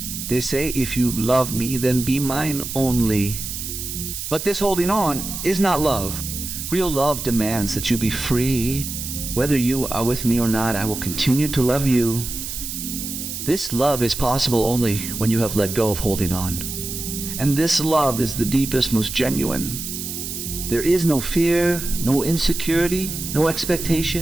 They say, if you love me, then be mine only. But this holding on is not love. Real love demands that you be free. Whether you are with me or not, I will continue to love you. This love is possible only when you have let go of holding on. And this love is the deepest, most genuine. There is no fear, no insecurity, no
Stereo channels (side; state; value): right; noise; hiss, 6 dB below the sound